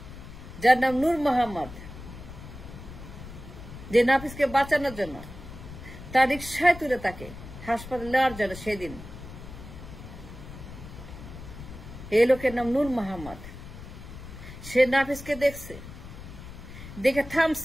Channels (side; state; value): left; noise; rumble, 13 dB below the sound